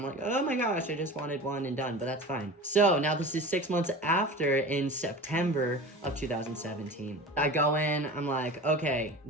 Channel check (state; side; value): normal; both; correlation 0.34